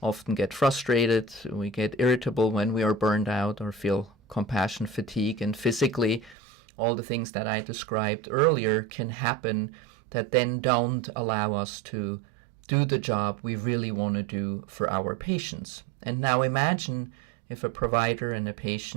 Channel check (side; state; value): left; drops out; at 6.4 s